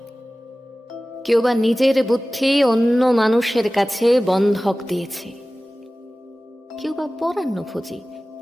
কেউ বা নিজের বুদ্ধি অন্য মানুষের কাছে বন্ধক দিয়েছে, কেউ বা পরান্নভোজী,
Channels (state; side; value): normal; both; correlation 0.97